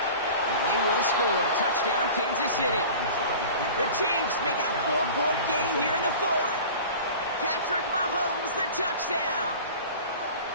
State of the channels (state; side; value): inverted; both; correlation -0.39